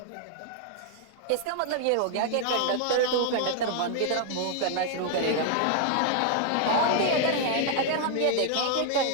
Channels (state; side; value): different; both; correlation 0.00